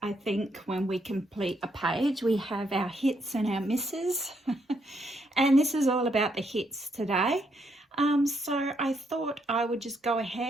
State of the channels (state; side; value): normal; both; correlation 0.75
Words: think when we complete a page we have our hits and our misses and this is all about the hits today. So I thought I would just go